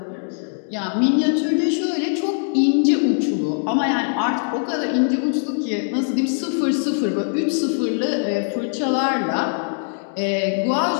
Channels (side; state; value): right; silent; digital silence